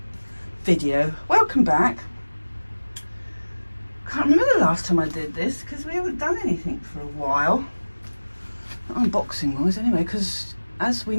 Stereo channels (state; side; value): inverted; both; correlation -1.00